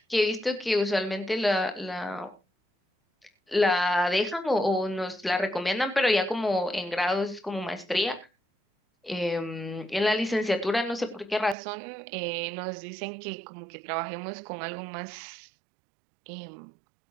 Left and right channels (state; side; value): drops out; left; at 11.6 s